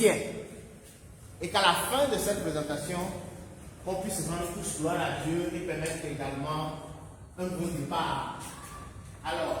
Et qu'à la fin de cette présentation, on puisse rendre tous gloire à Dieu et permettre également un bon départ.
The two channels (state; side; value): identical; both; correlation 1.00